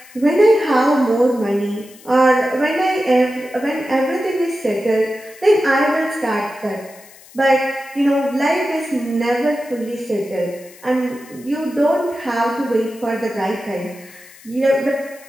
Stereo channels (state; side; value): noise; left; hiss, 23 dB below the sound